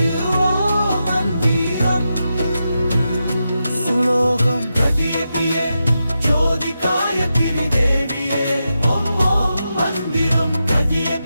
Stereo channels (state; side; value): inverted; both; correlation -0.88